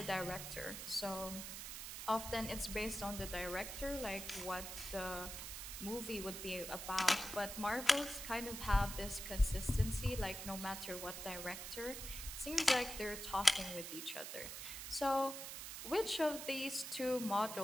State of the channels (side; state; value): right; noise; hiss, 7 dB below the sound